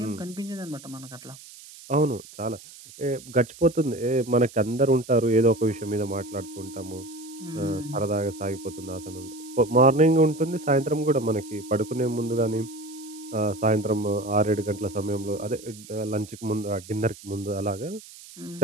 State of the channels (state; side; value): noise; right; hiss, 18 dB below the sound